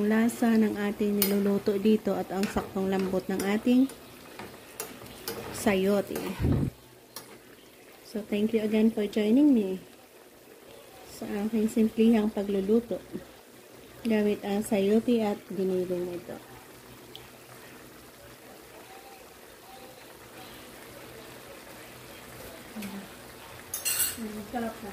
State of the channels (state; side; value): identical; both; correlation 1.00